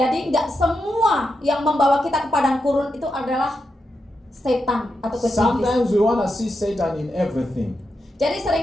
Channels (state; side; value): normal; both; correlation 0.86